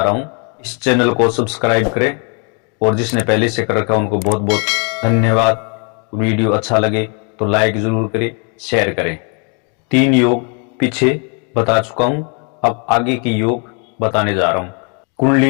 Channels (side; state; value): right; quieter; 37.0 dB